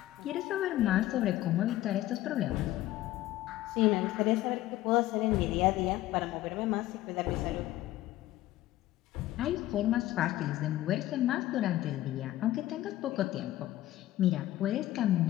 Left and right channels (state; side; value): quieter; right; 15.2 dB